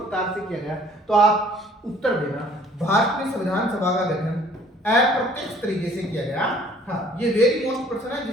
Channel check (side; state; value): both; normal; correlation 0.56